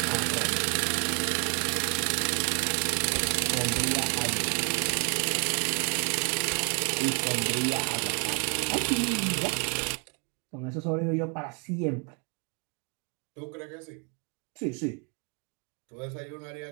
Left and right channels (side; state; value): left; quieter; 38.3 dB